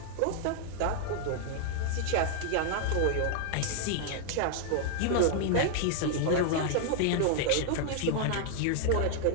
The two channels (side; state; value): both; different; correlation 0.00